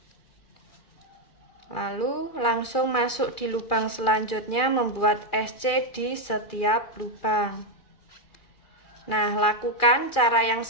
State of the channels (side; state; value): right; late; 2.4 ms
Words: Lalu langsung masuk di lubang selanjutnya, membuat SC di setiap lubang. Nah, lakukan cara yang